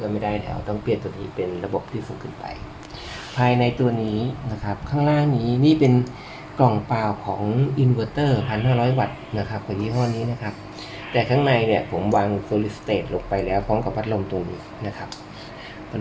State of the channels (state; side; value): identical; both; correlation 1.00